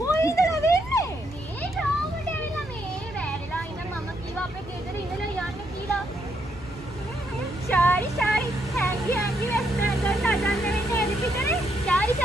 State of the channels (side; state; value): both; normal; correlation 0.76